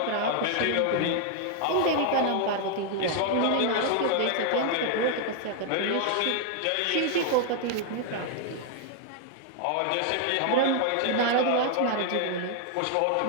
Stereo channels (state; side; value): different; both; correlation 0.00